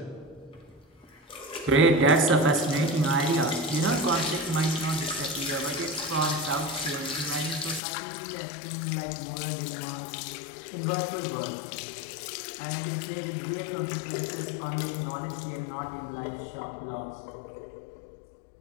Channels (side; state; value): right; drops out; at 7.8 s